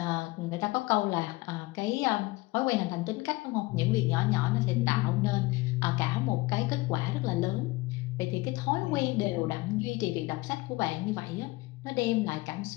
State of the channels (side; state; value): right; quieter; 21.3 dB